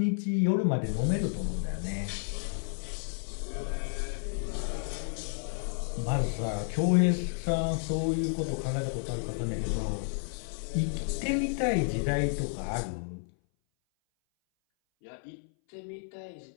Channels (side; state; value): right; silent; 57 dB below the other